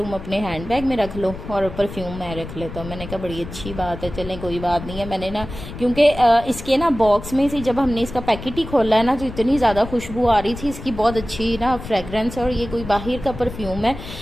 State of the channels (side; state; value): left; noise; rumble, 11 dB below the sound